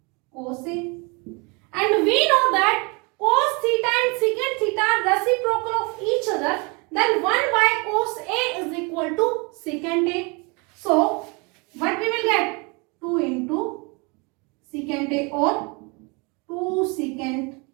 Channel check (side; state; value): left; quieter; 30.1 dB